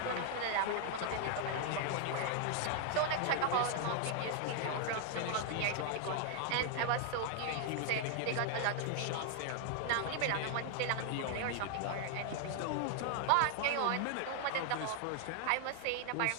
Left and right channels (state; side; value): different; both; correlation 0.00